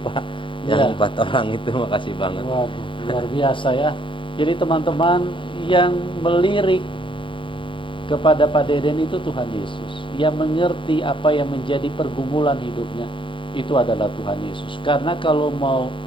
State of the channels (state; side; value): late; right; 0.25 ms